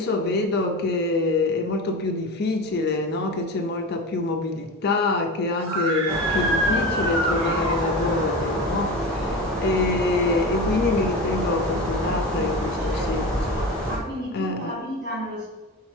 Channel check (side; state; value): both; normal; correlation 0.27